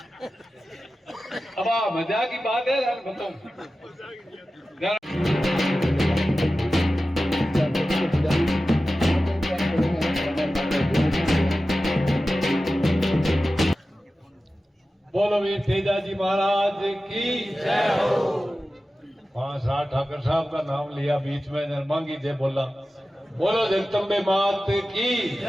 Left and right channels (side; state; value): both; normal; correlation 0.94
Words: अब मजाक की बात है यार बताऊं बोलो वीर तेजाजी महाराज की जय हो। 5-8 ठाकर साहब का नाम लिया बीच में नरमांगी जय बोला बोलो जगदम्बे मात की